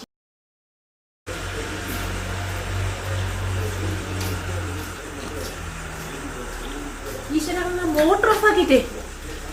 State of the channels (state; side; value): identical; both; correlation 1.00